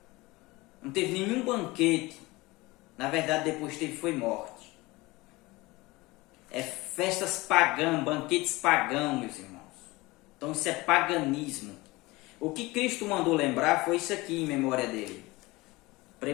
Não teve nenhum banquete. Na verdade, depois teve foi morte. É festas pagãs, banquetes pagãos, meus irmãos. Então isso é paganismo. O que Cristo mandou lembrar foi isso aqui em memória dele.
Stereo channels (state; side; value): quieter; right; 21.7 dB